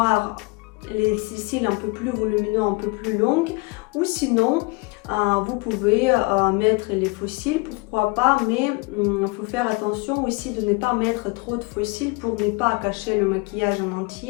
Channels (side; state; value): right; quieter; 26.8 dB